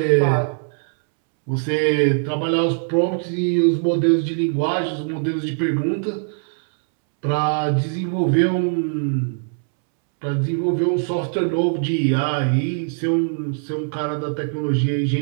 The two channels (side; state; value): left; silent; 65 dB below the other